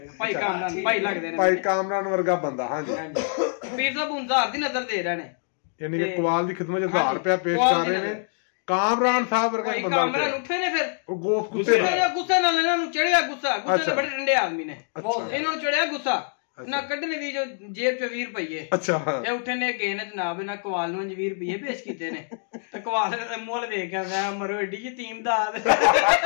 भाई कामरान भाई लगदे ने भाई कामरान वर्गा बंदा हां जी पीर साहब 1000 ਦੀ ਨਜ਼ਰ ਦੇ ਰਹੇ ਨੇ यानी कि कुआल ਦੀ ਖਿਦਮਤ 1000 ਰੁਪਏ पेश कर रहे ने कामरान साहब वर्गा बंदा कामरान उठे ने फिर ਉਹ ਗੋਸ ਗੁੱਸੇ ਨਾਲ ਇਹਨਾਂ ਨੂੰ ਚੜਿਆ ਗੁੱਸੇ ਨਾਲ ਬੜੇ ਠੰਡੇ ਆਦਮੀ ਨੇ ਇਹਨਾਂ ਨੂੰ ਚੜਿਆ ਗੁੱਸਾ ਨਾ ਕੱਢਣੇ ਦੀ ਜੋ ਜੇਬ ਚ 20 ਰੁਪਏ ਅੱਛਾ ਇਹ ਉੱਠੇ ਨੇ ਗਏ ਨੇ ਜਨਾਬ ਇਹਨਾਂ ਕਵਾਲ ਨੂੰ 20 ਰੁਪਏ ਪੇਸ਼ ਕੀਤੇ ਨੇ ਤੇ ਕਵਾਲ ਦਾ ਮੁੱਲ ਵੇਖ ਕੇ ਆਂਦਾ ਮਰੋ ਏਡੀ ਯਤੀਮ ਦਾ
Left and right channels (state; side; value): silent; right; 58 dB below the other